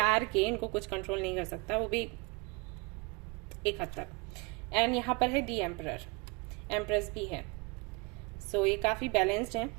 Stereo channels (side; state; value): left; quieter; 28.6 dB